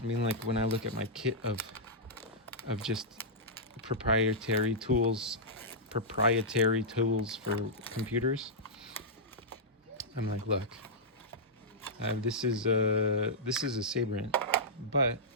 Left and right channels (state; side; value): normal; both; correlation -0.11